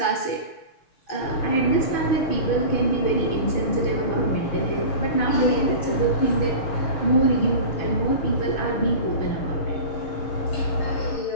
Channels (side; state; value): right; late; 6.5 ms